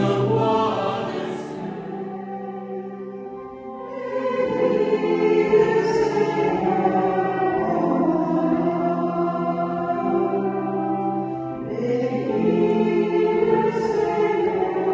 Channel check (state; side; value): identical; both; correlation 1.00